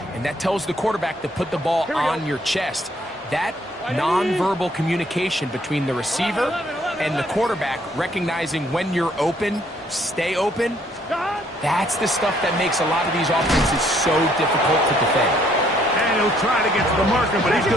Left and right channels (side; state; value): both; normal; correlation 0.66